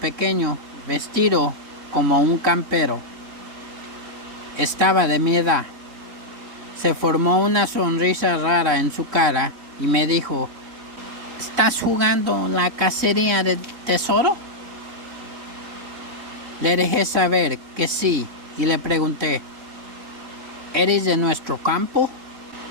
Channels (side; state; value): left; late; 3.7 ms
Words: vestido como un campero. Estaba de mi edad. Se formó una sonrisa rara en su cara y me dijo: ¿estás jugando la cacería del tesoro? Le dejé saber que sí y le pregunté, ¿eres de nuestro campo?